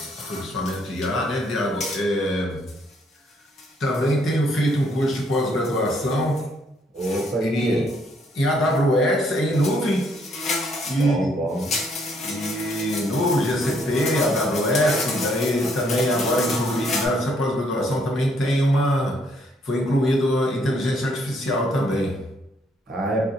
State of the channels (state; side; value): normal; both; correlation 0.69